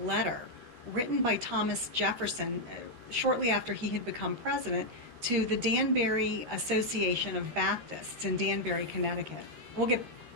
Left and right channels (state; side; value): late; left; 13 ms